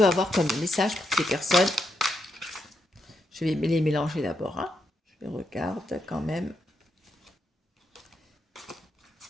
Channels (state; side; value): normal; both; correlation 0.82